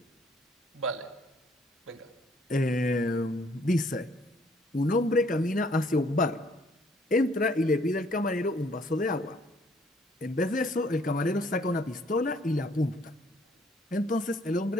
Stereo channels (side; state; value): both; normal; correlation 0.63